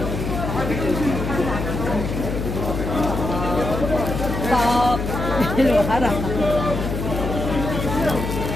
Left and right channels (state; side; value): noise; left; hum, 4 dB below the sound